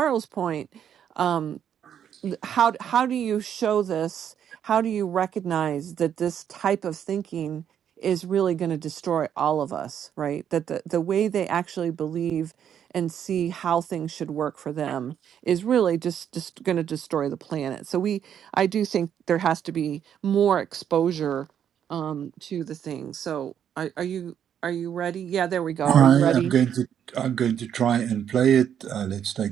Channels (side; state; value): left; quieter; 9.0 dB